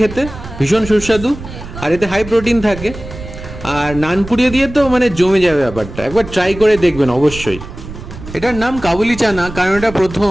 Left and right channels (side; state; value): right; noise; rumble, 12 dB below the sound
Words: খেতে, ভীষণ সুস্বাদু। আর এতে হাই প্রোটিন থাকে। আর নানপুরি দিয়ে তো মানে জমে যাবে ব্যাপারটা, একবার ট্রাই করে দেখবেন অবশ্যই। এটার নাম কাবুলি চানা কারণ এটা